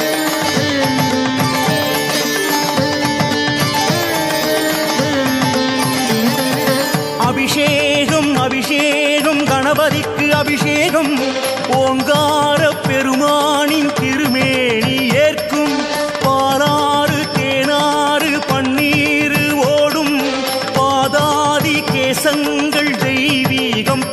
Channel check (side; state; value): both; identical; correlation 1.00